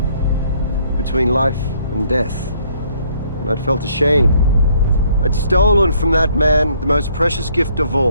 between life and death. And I'd felt ashamed. I'd stolen from that man the most precious gift of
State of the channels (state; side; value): inverted; both; correlation -0.65